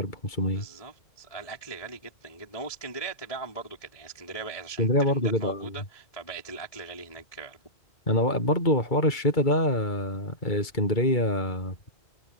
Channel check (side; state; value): right; late; 2.3 ms